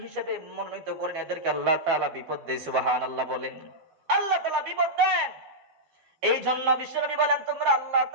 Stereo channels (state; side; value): late; left; 12 ms